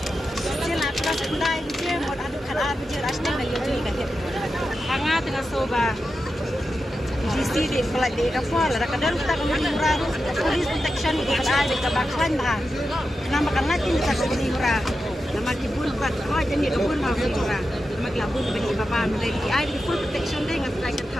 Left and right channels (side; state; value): both; normal; correlation 0.90